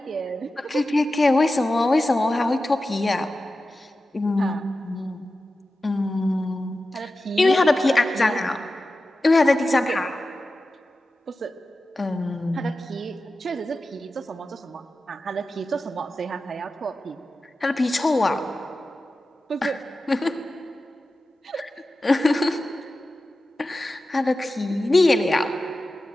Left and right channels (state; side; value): normal; both; correlation 0.93